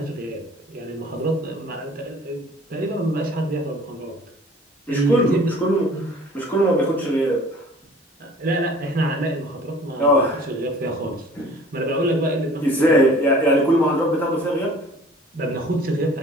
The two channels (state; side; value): normal; both; correlation 0.49